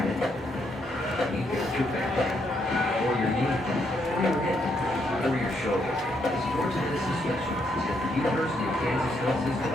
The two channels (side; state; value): both; normal; correlation 0.76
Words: it, you got your back, or your knee, or your hip, or your shoulder. The Sports Medicine Specialist is at the University of Kansas Health System,